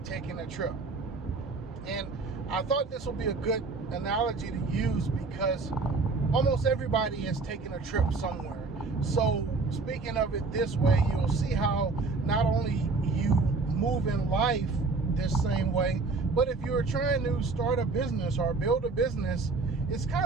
taking a trip. And I thought this would be a good analogy to use because almost everybody is taking a trip somewhere. So speaking of it this way, you'll see how not only you move in life this same way, but if you're trying to start a business or build a business, it's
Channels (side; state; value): left; quieter; 4.0 dB